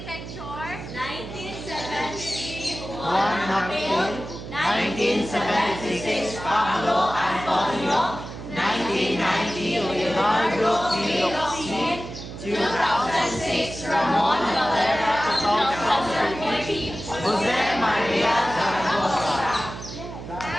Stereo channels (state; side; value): noise; right; hum, 11 dB below the sound